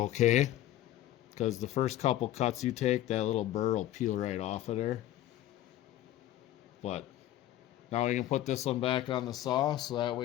because the first couple cuts you take, that little burr will peel right off of there. But now we can put this one back on the saw, so that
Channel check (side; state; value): right; quieter; 13.5 dB